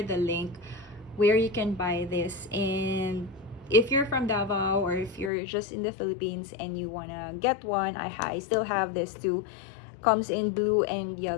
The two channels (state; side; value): drops out; right; at 5.3 s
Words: the link where you can buy this, and if you're from Davao or if you're just in the Philippines and you wanna get one, I still have this too. Comes in blue and